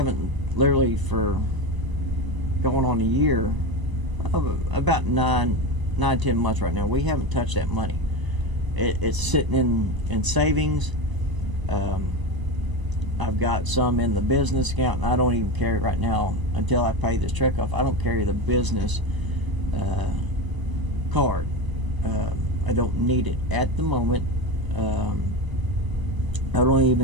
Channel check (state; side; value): late; left; 1.0 ms